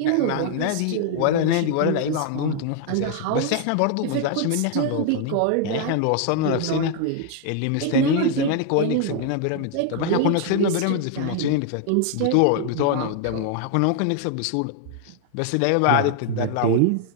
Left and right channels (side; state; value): both; different; correlation 0.00